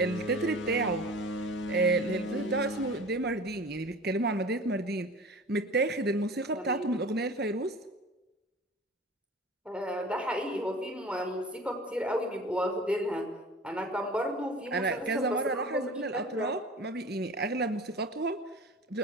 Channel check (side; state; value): both; normal; correlation 0.39